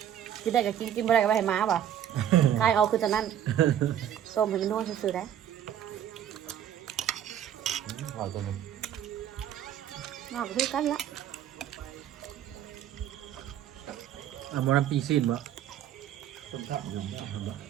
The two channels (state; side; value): quieter; left; 10.3 dB